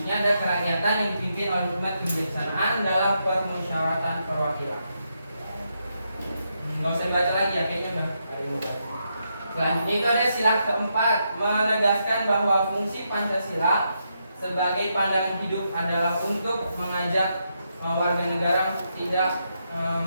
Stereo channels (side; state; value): both; inverted; correlation -0.81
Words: ada kerakyatan yang dipimpin oleh hikmat kebijaksanaan dalam permusyawaratan perwakilan. nggak usah baca lagi ya, kayaknya udah ada yang mau baca. Selanjutnya itu ada sila keempat, menegaskan bahwa fungsi Pancasila sebagai pandangan hidup adalah untuk mengajak warga negara tidak